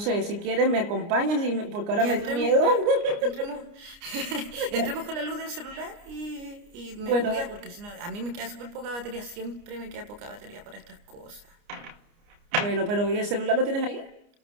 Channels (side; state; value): left; late; 29 ms